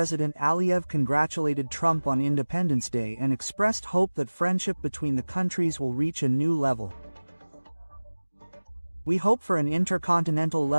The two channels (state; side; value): inverted; both; correlation -1.00